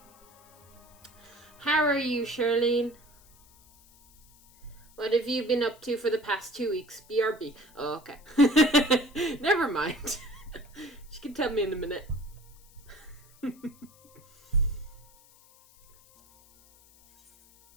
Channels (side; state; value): left; noise; hiss, 27 dB below the sound